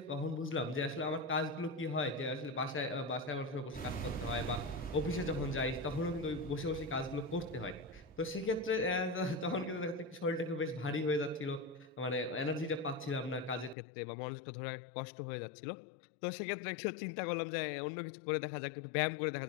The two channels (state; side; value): drops out; right; at 13.8 s